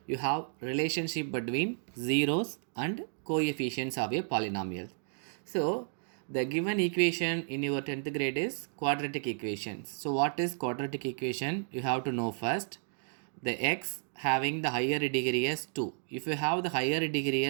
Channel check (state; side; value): silent; left; digital silence